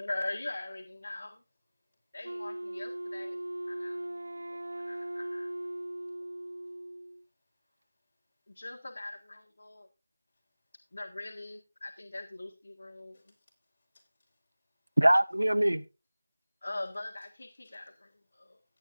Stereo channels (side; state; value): both; inverted; correlation -0.99